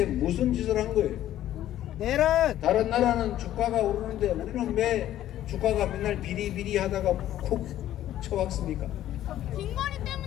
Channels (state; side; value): quieter; right; 12.7 dB